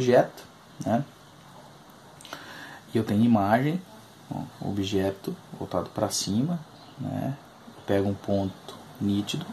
né? E eu tenho imagem, ó, objeto voltado para cima, né? Eu pego um ponto nítido,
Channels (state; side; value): identical; both; correlation 1.00